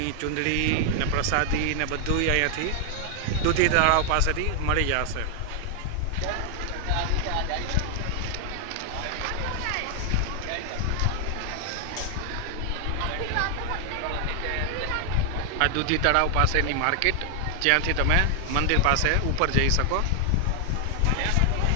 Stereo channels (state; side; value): different; both; correlation 0.00